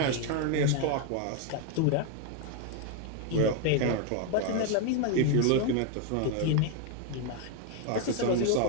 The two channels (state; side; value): different; both; correlation 0.01